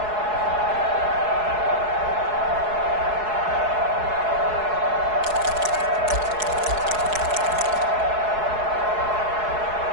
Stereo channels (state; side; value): late; left; 4.7 ms